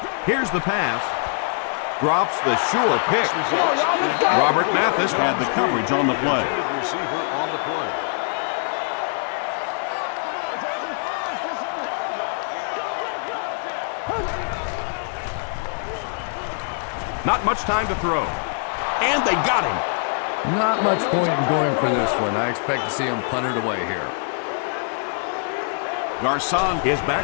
Here's the pass. Drops the sure pick. Robert Mathis had the coverage on the play. Receiver on the play. Not much time to throw. And they got him. Not much point in going for this one. I expect to see him punt it away here. Garcon is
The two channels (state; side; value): silent; right; 63 dB below the other